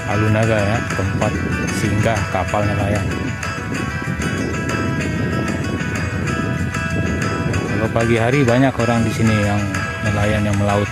Alunaga ya, tempat singgah kapal nelayan. Kalau pagi hari banyak orang di sini yang nelayan yang melaut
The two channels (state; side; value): identical; both; correlation 1.00